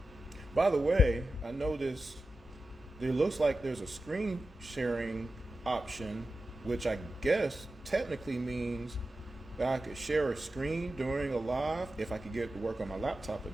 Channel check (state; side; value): normal; both; correlation 0.92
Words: By the way, I noticed there looks like there's a screen sharing option, which I guess technically means that I could share a screen during a live if I could get it to work on my laptop